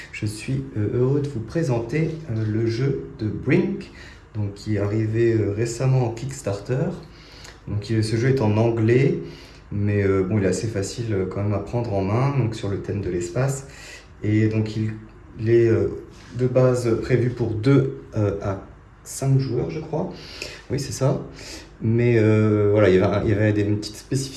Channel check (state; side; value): identical; both; correlation 1.00